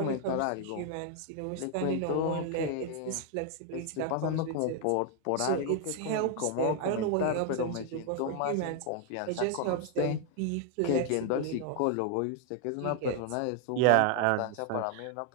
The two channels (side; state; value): both; different; correlation 0.00